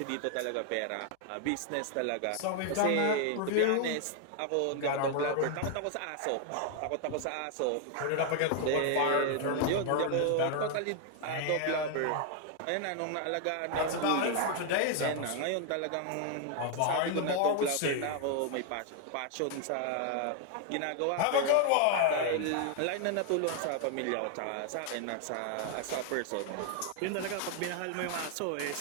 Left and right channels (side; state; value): both; different; correlation 0.00